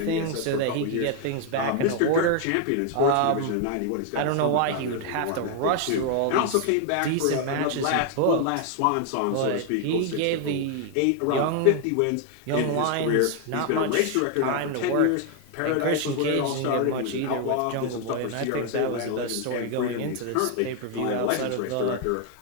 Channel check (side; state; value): both; different; correlation 0.01